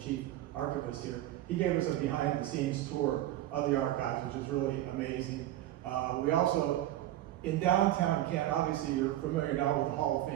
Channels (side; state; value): left; quieter; 14.0 dB